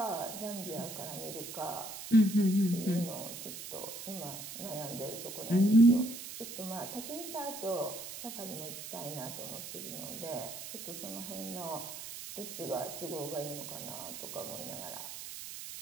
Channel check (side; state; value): right; noise; hiss, 9 dB below the sound